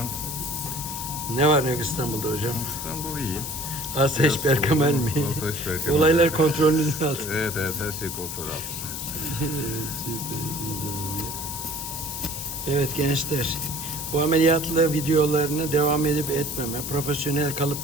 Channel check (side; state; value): left; noise; hiss, 6 dB below the sound